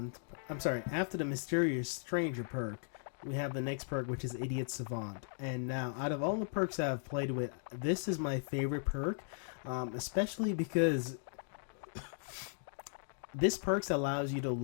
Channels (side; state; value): right; silent; digital silence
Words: after the Mysterious Stranger perk, we have the next perk, which is Idiot Savant. And now, out of all the perks I've played with, this is my favorite perk, especially because this perks allows you to